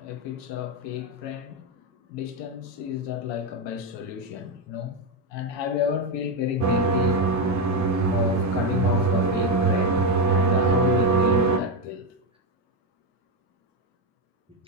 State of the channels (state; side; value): normal; both; correlation 0.08